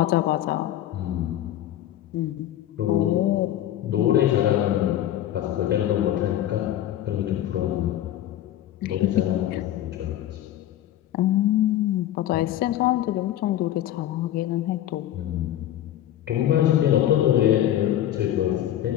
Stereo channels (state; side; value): quieter; right; 12.4 dB